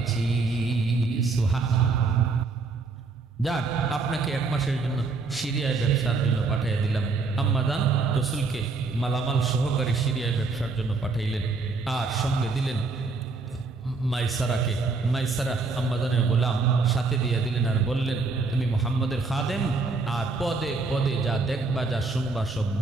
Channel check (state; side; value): quieter; left; 4.1 dB